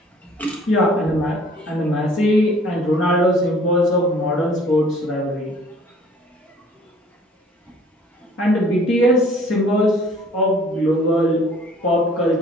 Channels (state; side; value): normal; both; correlation 0.54